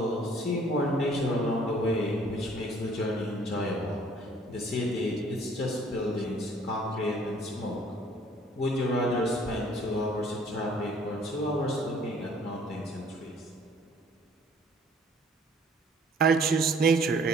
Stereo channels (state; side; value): normal; both; correlation 0.57